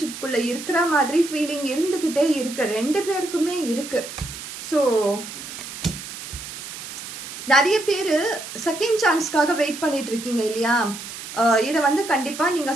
இருக்கிற மாதிரி ஃபீலிங் இருந்துகிட்டே இருக்கு, ரெண்டு பேருக்குமே இருக்கு. ஸோ நிறைய பேரு செகண்ட் சான்ஸ்க்காக வெயிட் பண்ணிட்டு இருக்கீங்க இல்லையா. இதை வந்து கண்டிப்பா நீங்க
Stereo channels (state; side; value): noise; right; hiss, 10 dB below the sound